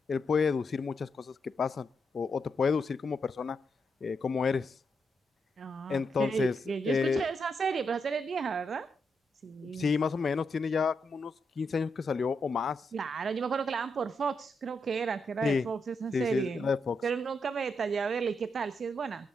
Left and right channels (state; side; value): normal; both; correlation 0.82